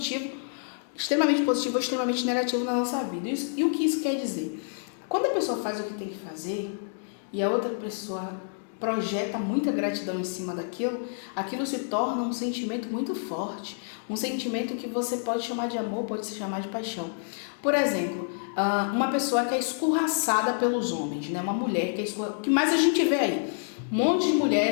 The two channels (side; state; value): right; silent; digital silence